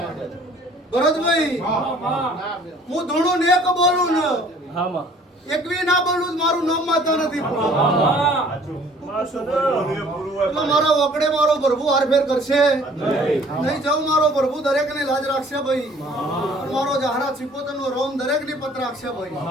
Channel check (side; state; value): both; normal; correlation 0.55